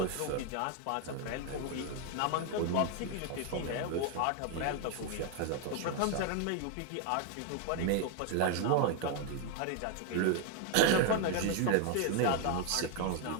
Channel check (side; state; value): both; different; correlation 0.01